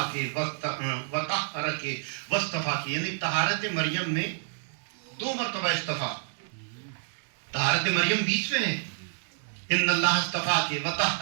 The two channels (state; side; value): silent; left; digital silence